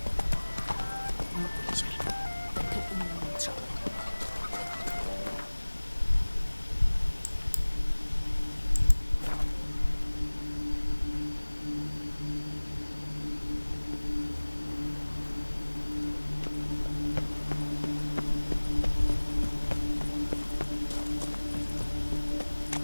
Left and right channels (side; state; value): both; inverted; correlation -1.00